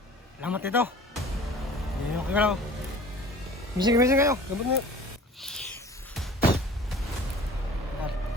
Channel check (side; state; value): both; normal; correlation 0.45